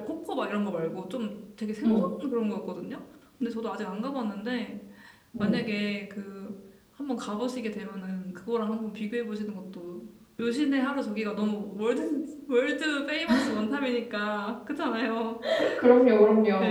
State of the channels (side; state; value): both; identical; correlation 1.00